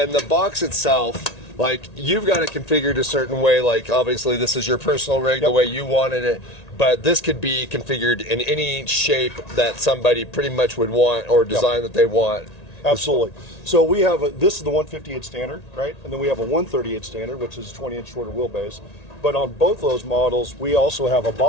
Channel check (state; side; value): late; right; 1.9 ms